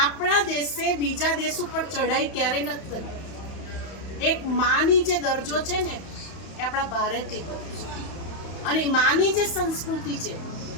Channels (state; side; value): late; right; 31 ms